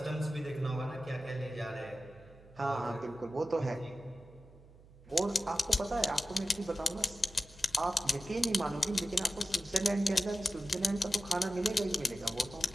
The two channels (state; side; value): noise; right; hum, 23 dB below the sound